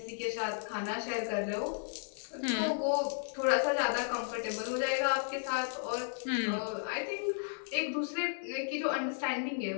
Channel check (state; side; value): silent; right; digital silence